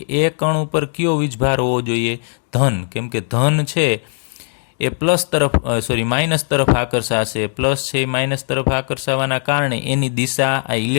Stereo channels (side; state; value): right; silent; 61 dB below the other